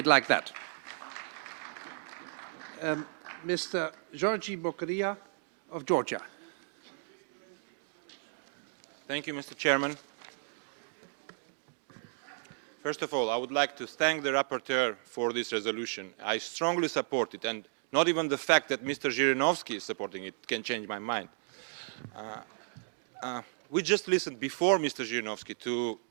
like that. Mr. Georgi Bokaria of Georgia. Thank you, Mr. Chairman. First of all, I would like to thank the rapporteur for this resolution. I strongly support it, and not even the fact that Mr. Zhirinovsky is supporting it can change my mind. We just listened before Mr. Zhirinovsky to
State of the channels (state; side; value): silent; left; digital silence